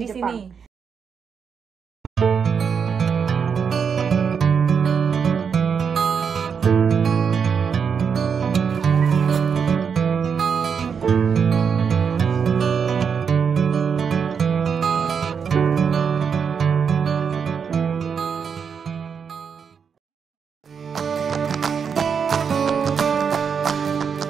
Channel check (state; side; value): quieter; left; 6.6 dB